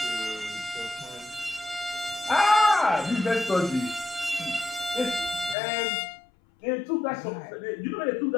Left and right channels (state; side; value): drops out; right; at 5.6 s